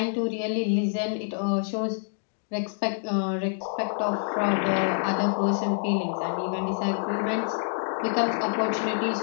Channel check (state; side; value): silent; right; digital silence